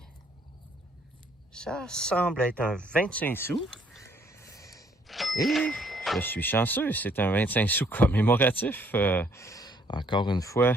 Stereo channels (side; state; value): both; normal; correlation 0.65